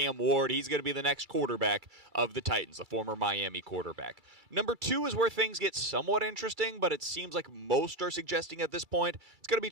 Ward. He's going to be the next quarterback of the Titans, the former Miami quarterback. Number two is where things get somewhat interesting, but it seems like most are suggesting at this point it's going to be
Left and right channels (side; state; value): left; late; 2.3 ms